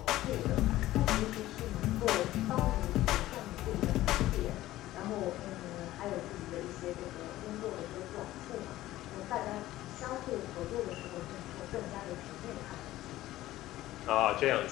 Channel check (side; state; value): right; quieter; 15.5 dB